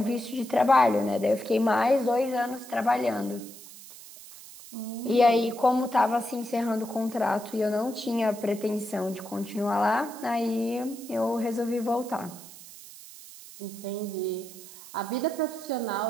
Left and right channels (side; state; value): right; noise; hiss, 17 dB below the sound